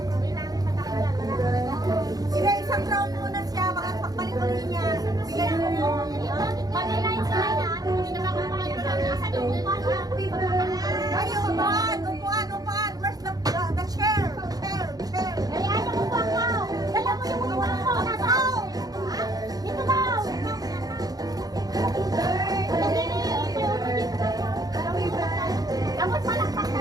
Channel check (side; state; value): left; late; 0.18 ms